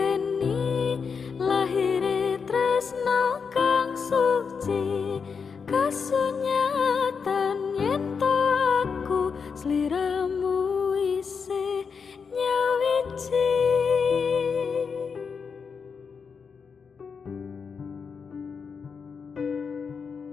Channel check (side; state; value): right; quieter; 5.8 dB